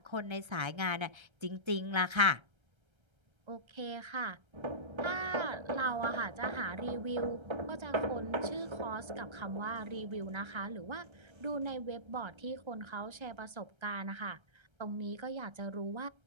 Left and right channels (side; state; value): left; late; 1.3 ms